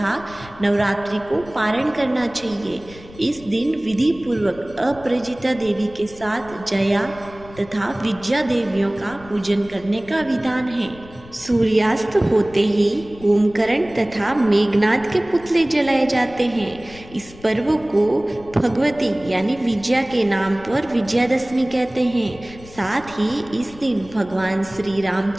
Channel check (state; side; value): noise; left; rumble, 20 dB below the sound